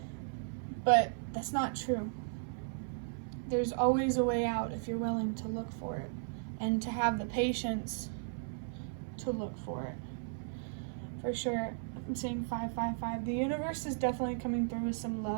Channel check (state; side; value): silent; left; 54 dB below the other